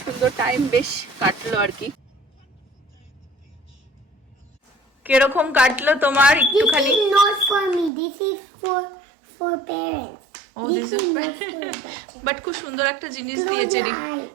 সুন্দর টাইম বেশ কাটলো আর কি। কিরকম কাটলো তোমার একটুখানি? This is not for me. This is for parents. ও দিস ইজ বাট খুব সুন্দর একটা জিনিস দিয়েছে,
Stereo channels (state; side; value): drops out; left; at 7.9 s